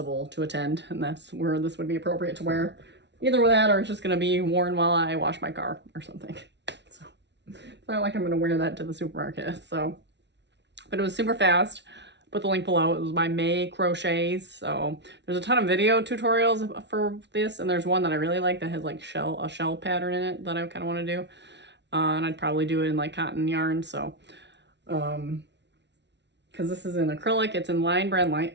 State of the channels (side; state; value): left; late; 0.51 ms